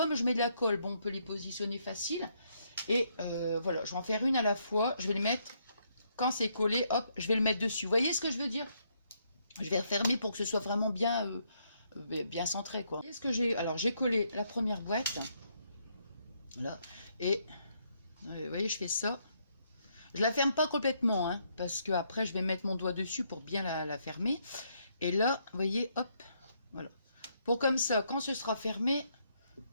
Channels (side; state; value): both; inverted; correlation -0.74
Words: je mets de la colle, bon, on peut les positionner facile. Et voilà, je vais en faire une à la fois. Je vais les mettre, quand c'est collé, hop, je vais le mettre dessus. Vous voyez ce que je veux dire? Je vais refermer pour que ce soit vraiment bien, bien centré, quoi. Vous voyez ce que j'ai? Alors, j'ai collé la première boîte. Là. Et, vous voyez, je fais ça. Je la ferme pas complètement, hein, parce que après je vais mettre mon doigt dessus pour bien la fermer. Et là, vous voyez, hop, voilà. Pour comme ça, quand ce sera fermé, vous